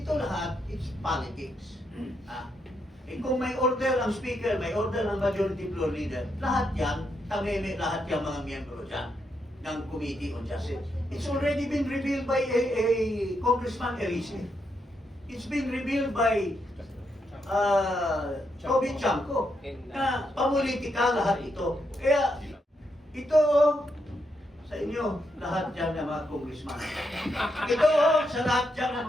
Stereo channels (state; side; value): normal; both; correlation 0.80